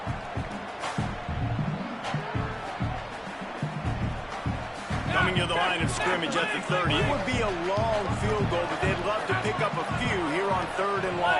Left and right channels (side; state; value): both; identical; correlation 1.00